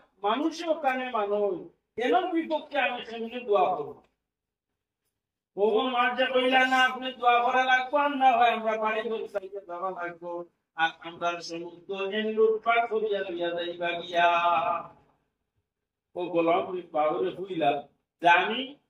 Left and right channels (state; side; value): identical; both; correlation 1.00